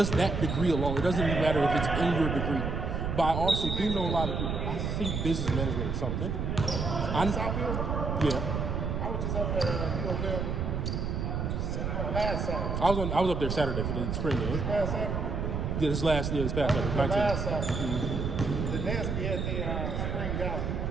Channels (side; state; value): right; noise; rumble, 1 dB below the sound